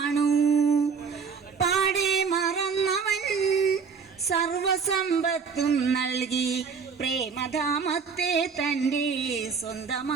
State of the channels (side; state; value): left; quieter; 5.8 dB